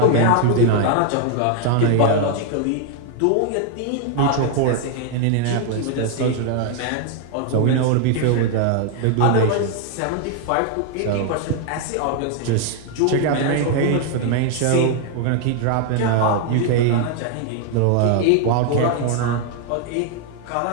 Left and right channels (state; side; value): different; both; correlation 0.00